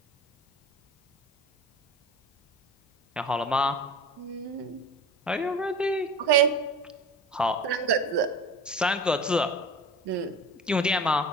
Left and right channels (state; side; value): normal; both; correlation 0.36